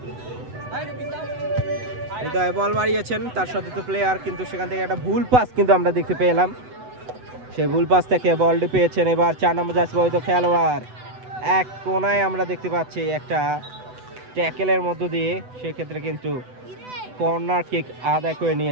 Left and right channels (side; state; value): left; late; 8.0 ms